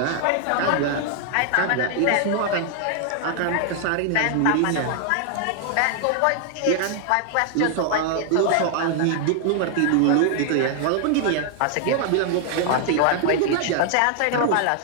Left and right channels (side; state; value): both; different; correlation 0.00